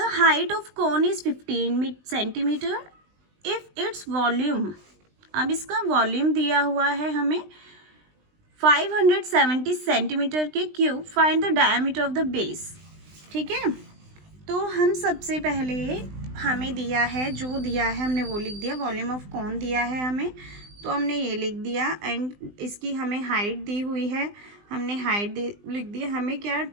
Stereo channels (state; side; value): late; left; 20 ms